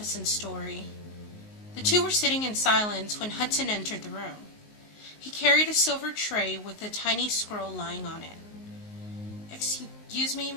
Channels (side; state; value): right; late; 19 ms